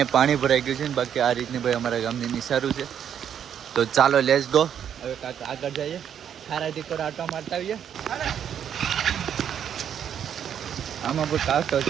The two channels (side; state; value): left; quieter; 8.9 dB